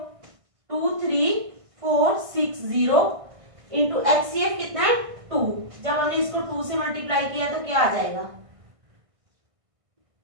2 3 4 6 0 इंटू एचसीएफ कितना है? 2। जब हमने इसको 2 से मल्टीप्लाई किया तो क्या आ जाएगा?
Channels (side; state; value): left; late; 1.5 ms